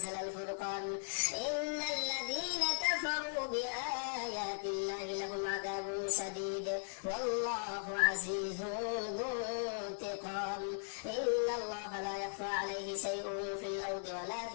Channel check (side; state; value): right; silent; digital silence